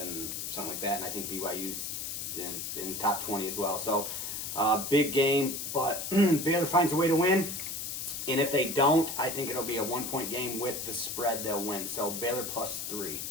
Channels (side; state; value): left; noise; hiss, 5 dB below the sound